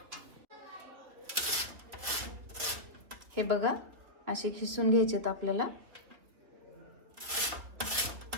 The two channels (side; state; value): left; late; 3.4 ms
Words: हे बघा, असे खिसून घ्यायचेत आपल्याला।